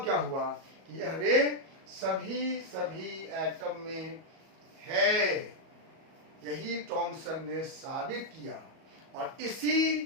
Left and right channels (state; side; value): late; left; 37 ms